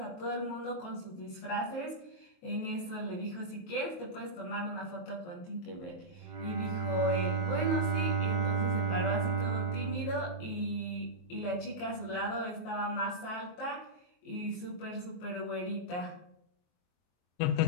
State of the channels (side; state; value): right; late; 23 ms